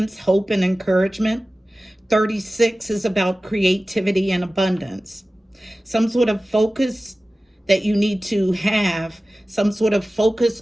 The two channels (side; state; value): both; normal; correlation 0.96